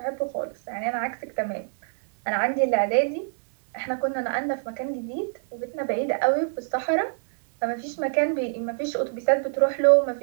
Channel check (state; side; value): silent; left; 62 dB below the other